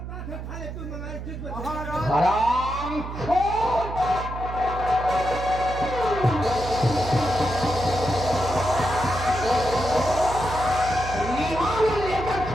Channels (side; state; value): right; noise; hum, 8 dB below the sound